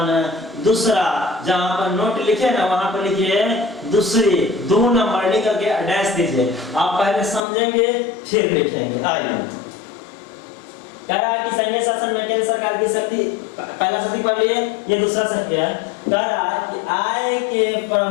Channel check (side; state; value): right; drops out; at 7.4 s